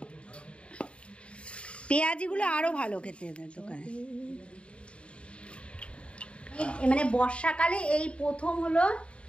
পেঁয়াজিগুলো আরো ভালো খেতে দোকানে। মানে বর্ষাকালে এই প্রথম হলো,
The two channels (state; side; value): late; right; 0.059 ms